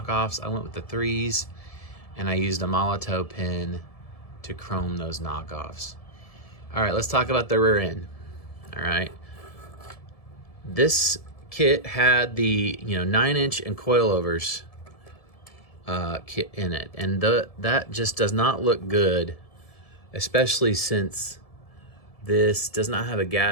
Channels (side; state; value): right; late; 1.7 ms